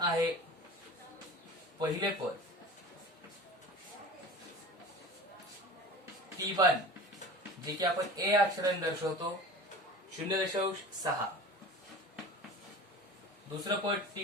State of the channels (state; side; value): normal; both; correlation 0.37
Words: पहिले पद P1 जे की आपण A अक्षराने दर्शवतो 0.6, दुसरं पद